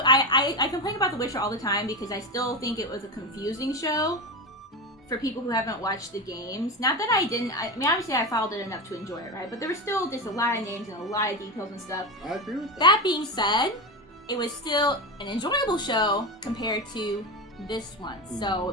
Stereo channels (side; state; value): both; normal; correlation 0.18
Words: I complain about The Witcher all the time because I still think it was a confusing show for people who haven't watched the games. Not that I didn't, I mean, obviously I followed it enough to enjoy it, right? But there was still just a lot of names and a lot of details and stuff. I agree with that. That being said, it was still an enjoyable show compared to this one. So